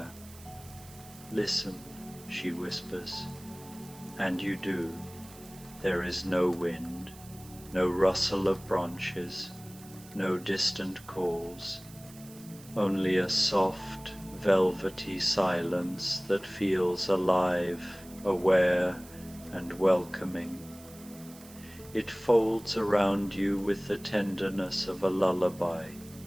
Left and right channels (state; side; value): noise; right; hiss, 20 dB below the sound